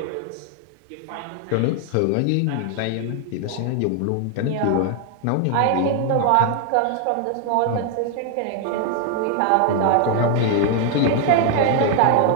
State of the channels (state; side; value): different; both; correlation 0.00